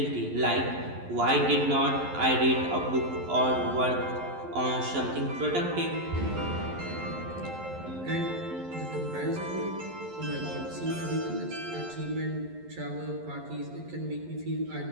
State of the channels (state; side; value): late; left; 11 ms